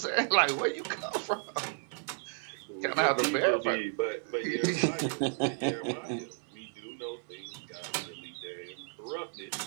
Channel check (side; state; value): left; silent; 56 dB below the other